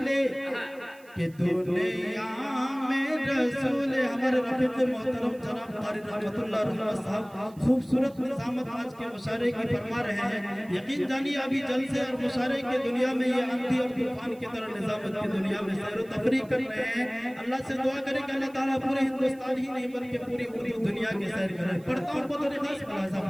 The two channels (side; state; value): right; noise; hiss, 27 dB below the sound